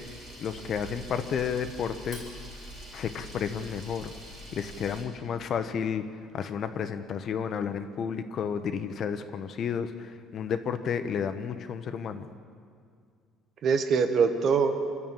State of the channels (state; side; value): normal; both; correlation 0.64